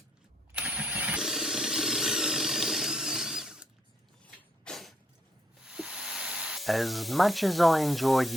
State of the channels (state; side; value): normal; both; correlation 0.73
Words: As much as I enjoy